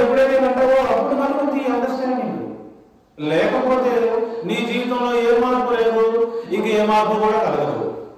ఎప్పుడైతే అంటావో అప్పుడు మనకు ఈ అండర్స్టాండింగ్. లేకపోతే నీ జీవితంలో ఏ మార్పు లేదు, ఇంక ఏ మార్పు కూడా కలగదు.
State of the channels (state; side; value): identical; both; correlation 1.00